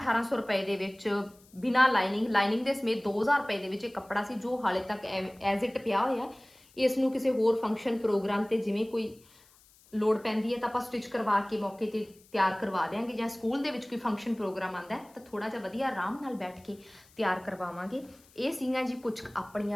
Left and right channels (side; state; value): left; noise; hiss, 28 dB below the sound